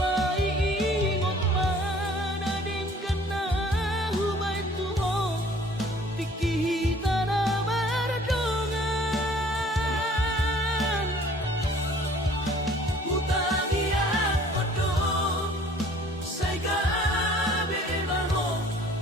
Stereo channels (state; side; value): normal; both; correlation 0.53